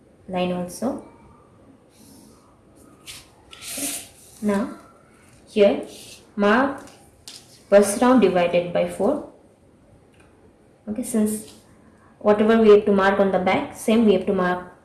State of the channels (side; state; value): both; identical; correlation 1.00